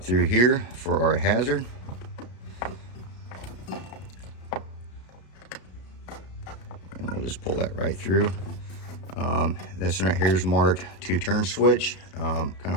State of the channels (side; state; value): right; late; 33 ms